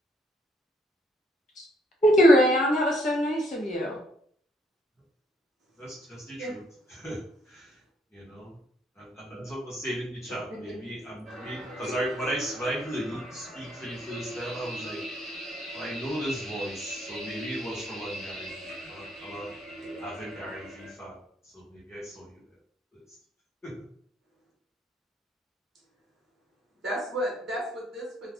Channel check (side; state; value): both; normal; correlation 0.69